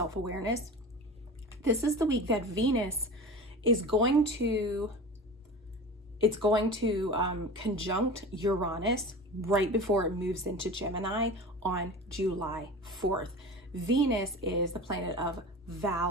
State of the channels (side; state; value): both; normal; correlation 0.33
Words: This is the week that Venus is going to conjunct Uranus right before it moves into Gemini on July 4th. Venus is the planet of